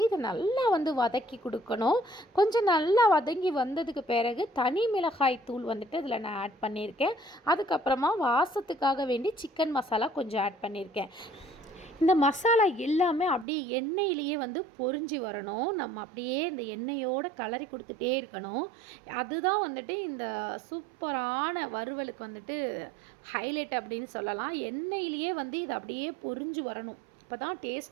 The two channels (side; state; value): left; drops out; at 13.5 s